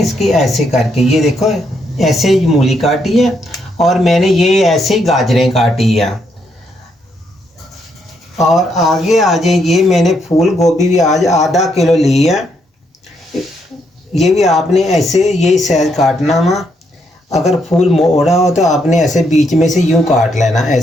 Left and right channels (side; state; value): both; normal; correlation 0.76